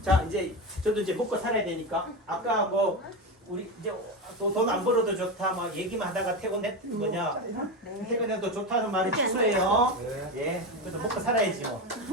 자, 이제 저도 이제 먹고 살아야 되니까 아까 뭐 우리 이제 돈 안 벌어도 좋다 막 얘기만 하다가 퇴근했던 거냐? 퇴근해도 좋다는 말이 취소예요. 예, 그래도 먹고 살아야지 뭐.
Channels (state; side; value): normal; both; correlation 0.18